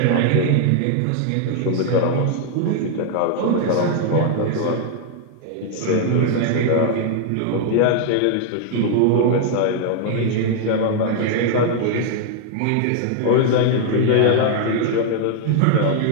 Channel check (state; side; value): different; both; correlation 0.00